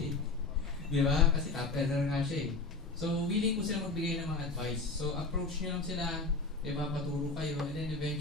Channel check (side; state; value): right; quieter; 3.8 dB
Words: Di ba? Kasi top earner nga siya eh. So, willing po sila magbigay ng mga advice. So, approach nyo lang sila, di ba, paturo kayo, and then